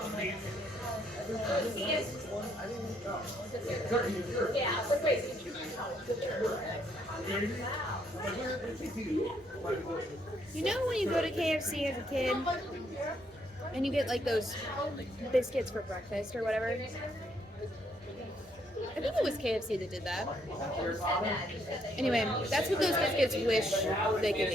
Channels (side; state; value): both; normal; correlation 0.71